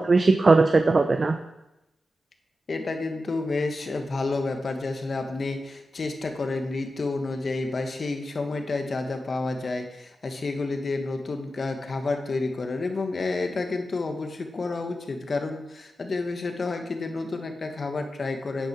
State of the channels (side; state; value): both; normal; correlation 0.91